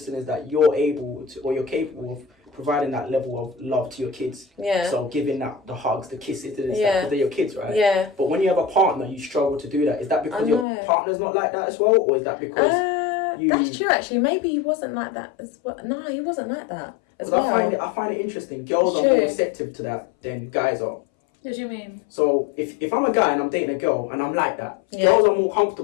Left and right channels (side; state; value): right; drops out; at 10.7 s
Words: is that you're able to, or you're capable of providing that level of love to your kids. Yeah. So giving that the hugs, the kisses, the this, Yeah. because they're your kids, right? Yeah. But when you have a partner, you struggle to do that. Is that because I your know. partner's not like that as well, or is that because you. That's true, actually. Maybe he wasn't like that as well. No, he wasn't like that as 'Cause well. I find it interesting. Girls are True. more receptive to that than guys are. What do you mean? So if I'm a guy and I'm dating a girl and I'm like that, Yeah. girls are more